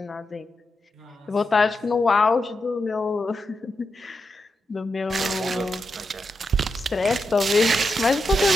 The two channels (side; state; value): both; normal; correlation 0.87